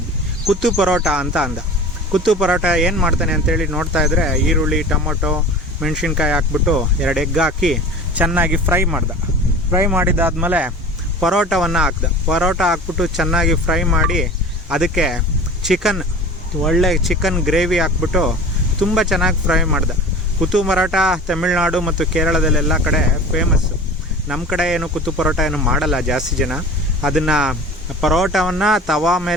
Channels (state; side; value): normal; both; correlation 0.38